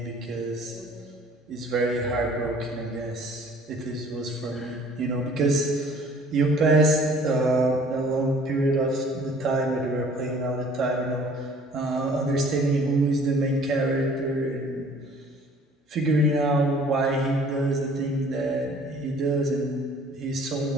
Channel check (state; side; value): normal; both; correlation 0.54